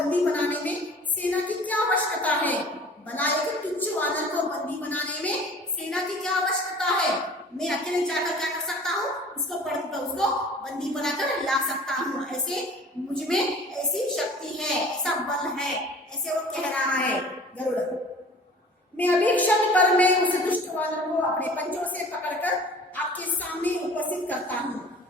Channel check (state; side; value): normal; both; correlation 0.46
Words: बनाने में सेना की क्या आवश्यकता है? भला एक तुच्छ वानर को बंदी बनाने में सेना की क्या आवश्यकता है? मैं अकेले जाकर क्या कर सकता हूँ? उसको बंदी बनाकर ला सकता हूँ। ऐसे मुझ में ऐसी शक्ति है, ऐसा बल है, ऐसे वो कह रहा है गरुड़। मैं अभी क्षण पर मैं उस दुष्ट वानर को अपने पंजों से पकड़कर आपके सामने उपस्थित करता हूँ।